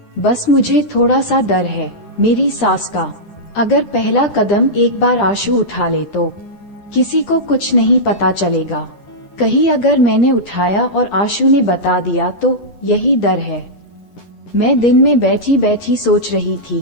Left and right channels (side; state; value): right; late; 10 ms